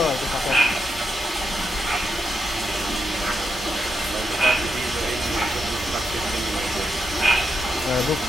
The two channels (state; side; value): normal; both; correlation 0.84